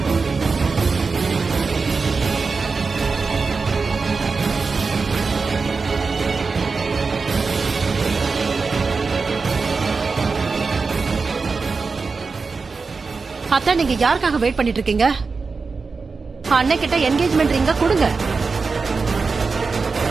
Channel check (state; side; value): quieter; left; 4.5 dB